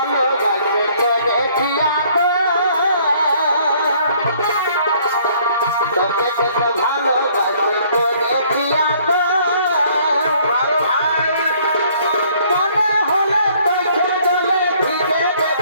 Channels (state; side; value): inverted; both; correlation -0.60